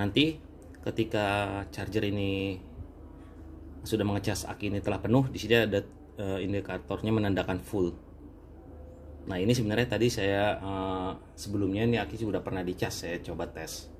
ketika charger ini sudah mengecas, aki ini telah penuh, di sini ada indikatornya menandakan full. Nah, ini sebenarnya tadi saya sebelumnya ini aki sudah pernah dicas, saya coba tes.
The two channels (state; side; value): identical; both; correlation 1.00